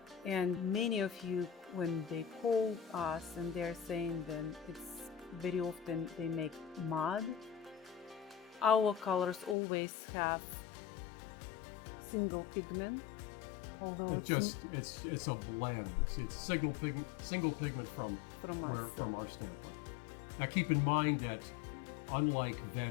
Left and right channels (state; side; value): drops out; right; at 9.6 s